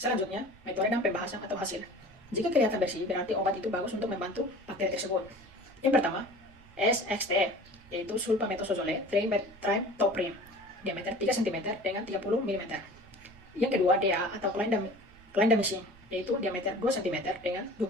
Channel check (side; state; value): right; noise; rumble, 26 dB below the sound